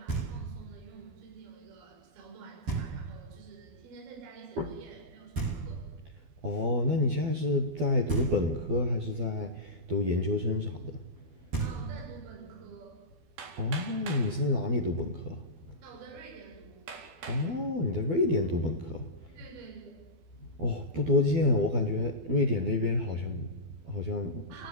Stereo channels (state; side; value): late; left; 12 ms